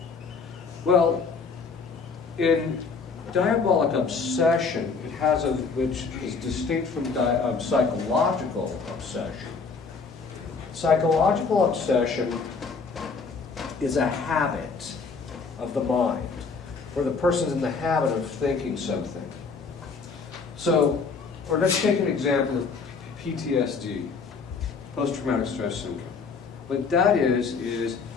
Well, in diabolic obsession, it has a, which is distinct from psychological obsession. Psychological obsession is a habit of the mind, where the person's in the habit of thinking something. So, or let's take an example of PTSD, post-traumatic stress syndrome. What that is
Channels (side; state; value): right; quieter; 4.9 dB